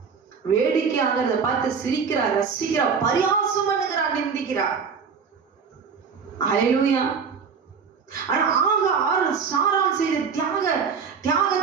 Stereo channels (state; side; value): quieter; left; 6.0 dB